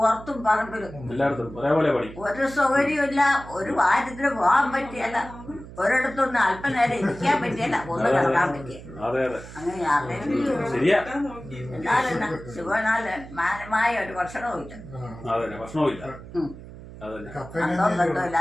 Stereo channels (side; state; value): right; noise; hum, 15 dB below the sound